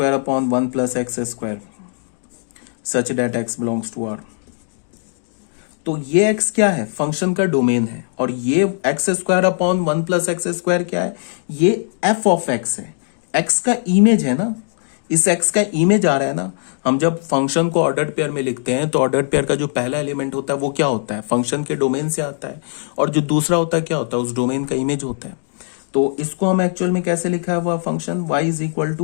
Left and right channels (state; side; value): silent; right; digital silence